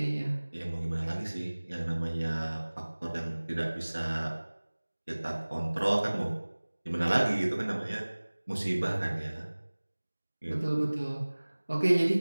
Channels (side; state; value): both; inverted; correlation -1.00